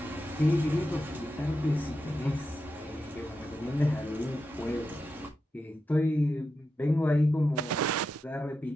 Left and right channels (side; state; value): both; normal; correlation 0.88